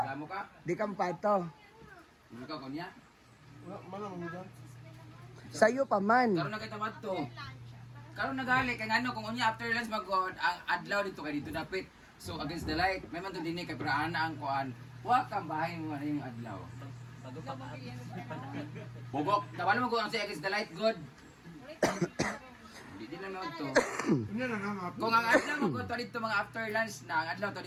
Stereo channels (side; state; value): both; identical; correlation 1.00